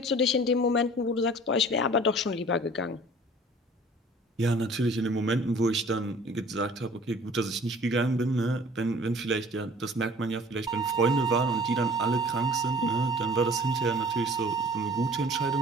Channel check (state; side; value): normal; both; correlation 0.48